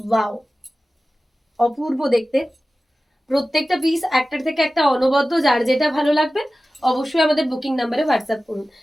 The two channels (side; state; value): both; normal; correlation 0.96